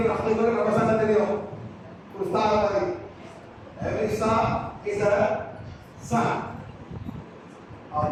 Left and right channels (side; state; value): both; identical; correlation 1.00